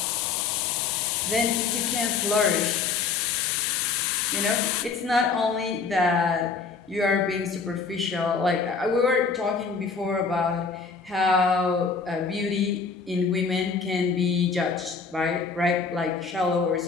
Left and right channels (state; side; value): quieter; right; 5.1 dB